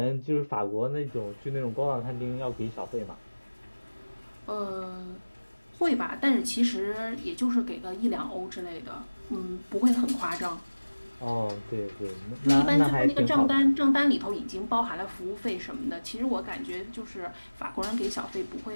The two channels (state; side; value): inverted; both; correlation -1.00